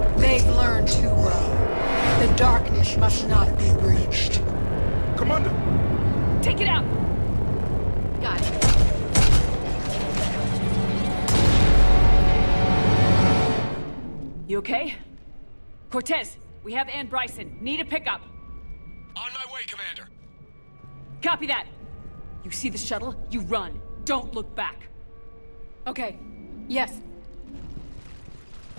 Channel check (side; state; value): both; inverted; correlation -1.00